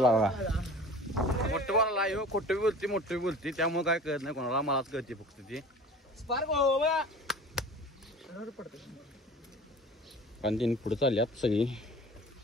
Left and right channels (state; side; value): normal; both; correlation 0.42